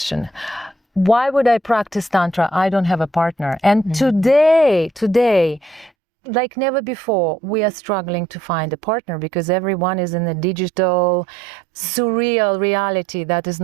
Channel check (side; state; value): left; drops out; at 5.9 s